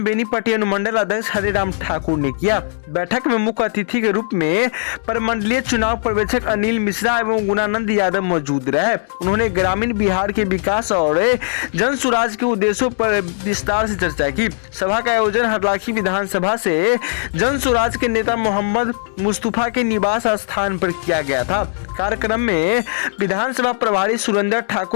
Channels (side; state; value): right; silent; digital silence